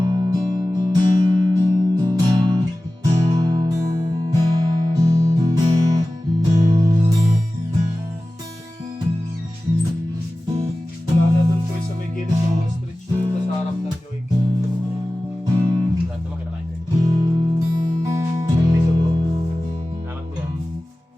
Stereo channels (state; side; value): normal; both; correlation 0.96